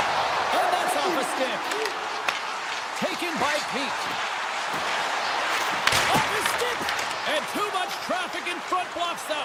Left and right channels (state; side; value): identical; both; correlation 1.00